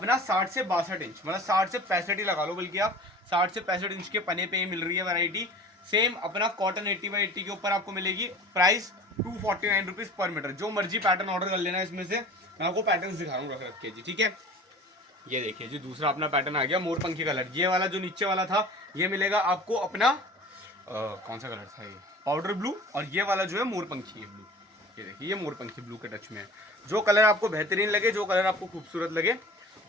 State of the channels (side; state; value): both; normal; correlation 0.42